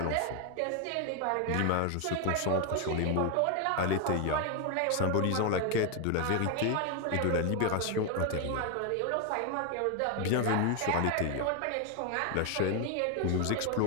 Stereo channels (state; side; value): different; both; correlation 0.01